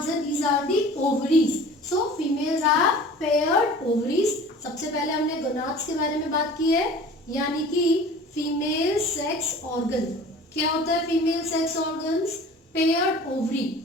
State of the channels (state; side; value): normal; both; correlation 0.43